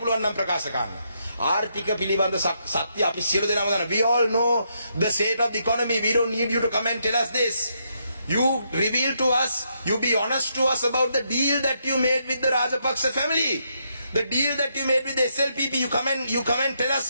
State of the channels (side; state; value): both; inverted; correlation -0.77